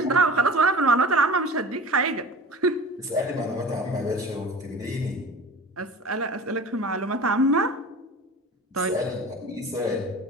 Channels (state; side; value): normal; both; correlation 0.38